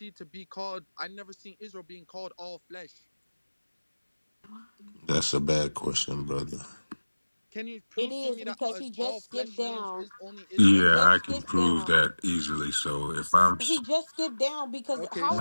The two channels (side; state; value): both; inverted; correlation -1.00